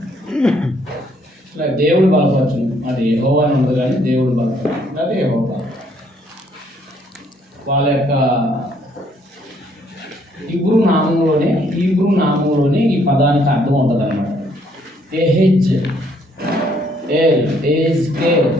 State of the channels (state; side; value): normal; both; correlation 0.67